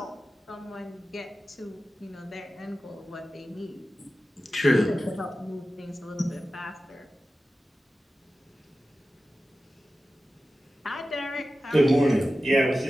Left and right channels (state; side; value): normal; both; correlation 0.94